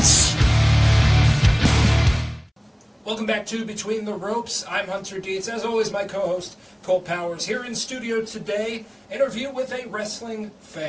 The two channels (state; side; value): identical; both; correlation 1.00